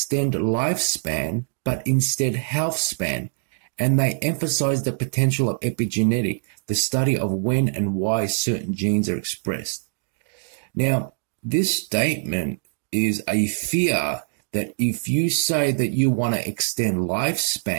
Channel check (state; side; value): silent; left; digital silence